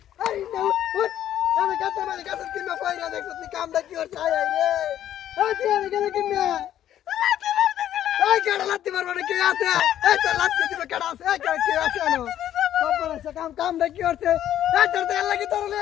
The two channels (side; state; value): right; quieter; 11.4 dB